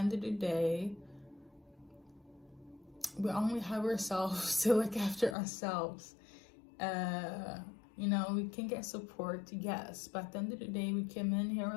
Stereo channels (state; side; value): drops out; right; at 5.4 s